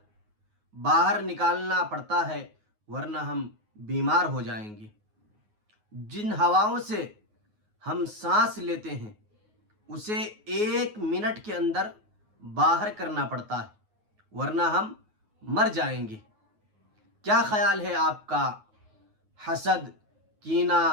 باہر نکالنا پڑتا ہے، ورنہ ہم بیمار ہو جائیں گے۔ جن ہواؤں سے ہم سانس لیتے ہیں اسے 1 منٹ کے اندر باہر کرنا پڑتا ہے، ورنہ ہم مر جائیں گے۔ کیا خیال ہے آپ کا حسد، کینہ،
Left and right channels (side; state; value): left; late; 9.4 ms